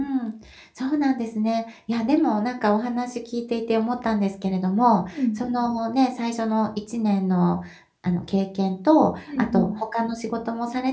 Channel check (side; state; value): both; identical; correlation 1.00